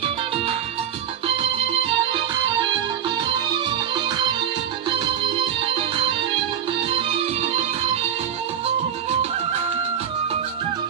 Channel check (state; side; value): quieter; left; 9.2 dB